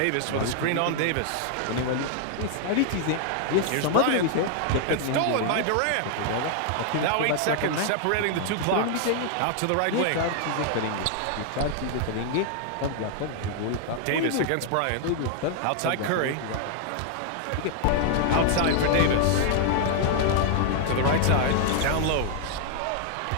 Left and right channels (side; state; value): both; different; correlation 0.00